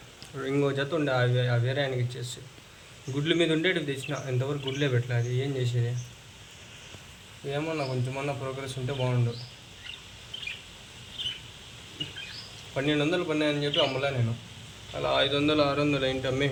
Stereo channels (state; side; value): identical; both; correlation 1.00